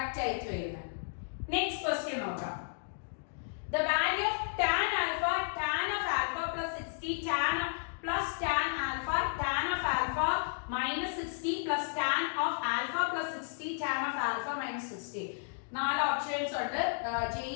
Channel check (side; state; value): right; silent; digital silence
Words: ആയിട്ട് വരുന്നത്. നെക്സ്റ്റ് ക്വസ്റ്റ്യൻ നോക്കാം. The value of tan alpha plus 60 tan alpha minus 60 plus tan of alpha plus 60 tan of alpha minus 60. 4 options ഉണ്ട്. JEE